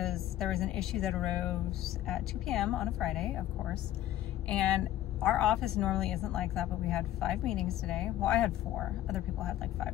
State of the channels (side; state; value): right; quieter; 13.1 dB